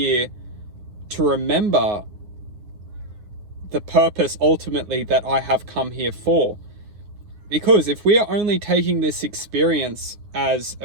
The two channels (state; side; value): late; left; 9.8 ms